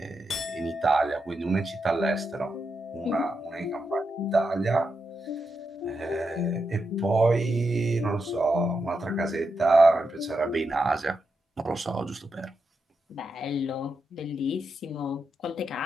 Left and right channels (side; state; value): both; normal; correlation 0.85